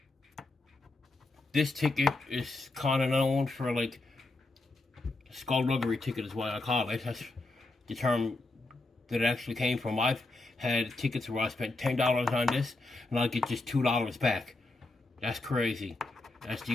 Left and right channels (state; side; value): quieter; right; 3.0 dB